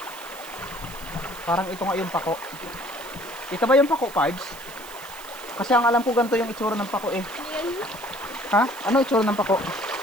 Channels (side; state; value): right; noise; hiss, 17 dB below the sound